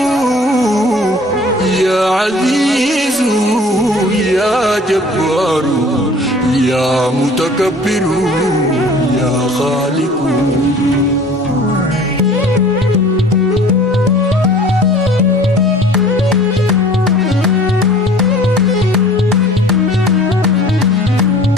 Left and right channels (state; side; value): normal; both; correlation 0.48